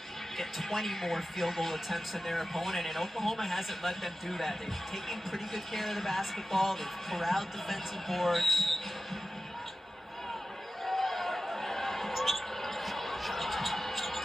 get 20 more field goal attempts than their opponent, and Oklahoma hasn't let them do that. They've taken pretty good care of the basketball. They've corralled defensive boards.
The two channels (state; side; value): normal; both; correlation 0.94